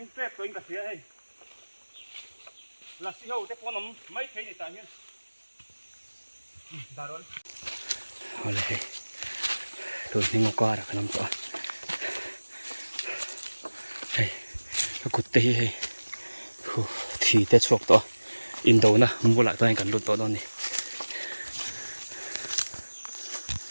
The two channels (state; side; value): inverted; both; correlation -1.00